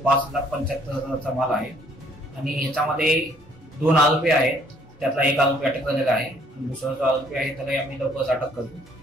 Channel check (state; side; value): normal; both; correlation 0.63